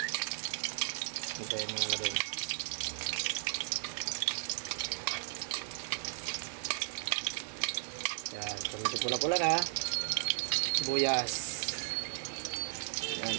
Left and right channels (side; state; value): left; silent; digital silence